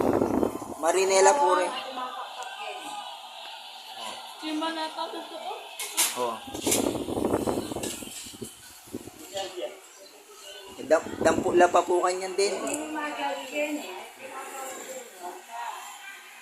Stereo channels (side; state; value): both; identical; correlation 1.00